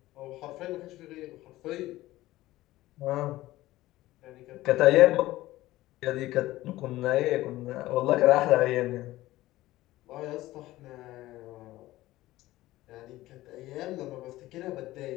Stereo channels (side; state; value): right; quieter; 16.8 dB